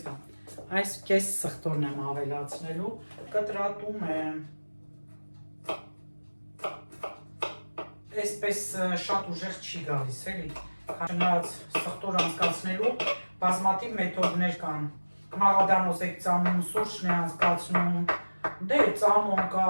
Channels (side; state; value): both; inverted; correlation -1.00